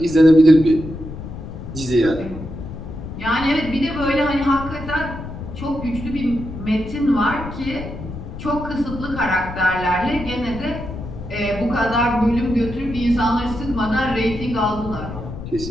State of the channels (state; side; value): noise; left; rumble, 10 dB below the sound